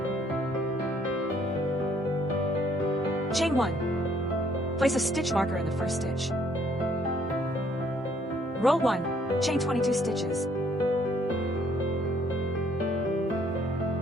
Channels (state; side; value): normal; both; correlation 0.65